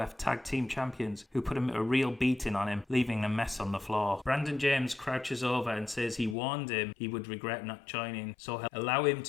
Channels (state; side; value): drops out; right; at 6.4 s